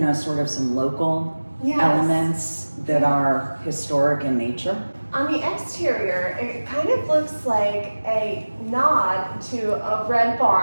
sort of some local elements that are historic in nature. On the exterior, it kind of looks like a nod to a red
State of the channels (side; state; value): both; inverted; correlation -1.00